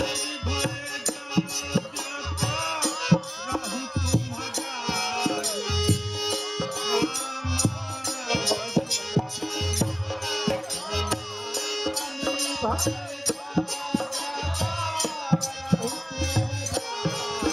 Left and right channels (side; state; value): both; identical; correlation 1.00